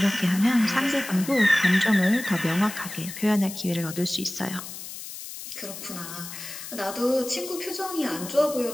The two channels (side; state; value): left; noise; hiss, 11 dB below the sound